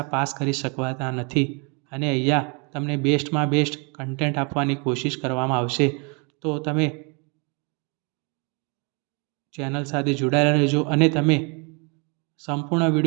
પાસ કરી શકવાના નથી. અને અહીંયા તમને બેસ્ટમાં બેસ્ટ કન્ટેન્ટ આપવાની કોશિશ કરવામાં આવશે. તો તમે ચેનલ સાથે જોડાયેલા રહેજો અને તમે સંપૂર્ણ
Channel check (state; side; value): quieter; left; 33.1 dB